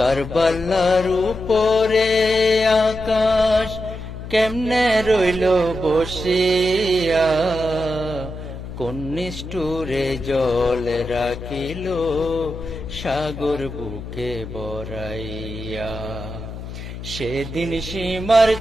উপরে আকাশ কেমনে রইল বসিয়া, কোন নিষ্ঠুরে জল রাখিল সাগর বুকে বরাইয়া। সেদিন সীমার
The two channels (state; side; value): noise; left; hum, 10 dB below the sound